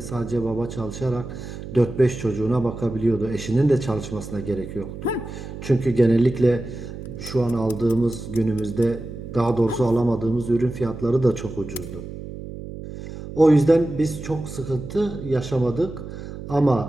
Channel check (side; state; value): right; noise; hum, 11 dB below the sound